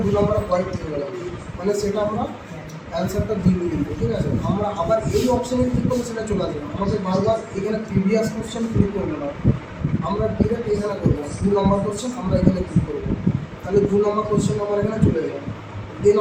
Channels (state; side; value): identical; both; correlation 1.00